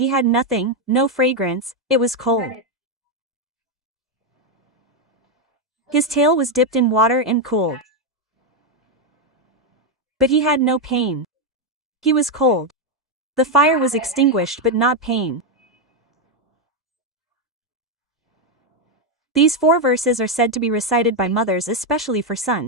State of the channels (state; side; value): normal; both; correlation 0.04